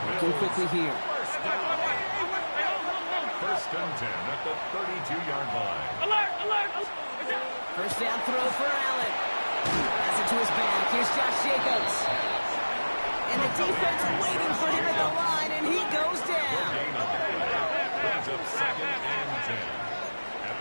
Looking quickly here. First and 10 at the 32-yard line. First down throw for Allen. Has it to his back. Here's Josh Jacobs. And the defense waiting for him at the line, and he goes down. Brings up second and 10 at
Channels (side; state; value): both; inverted; correlation -1.00